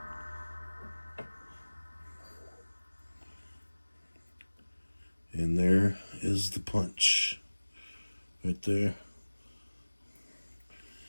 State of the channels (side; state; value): both; inverted; correlation -1.00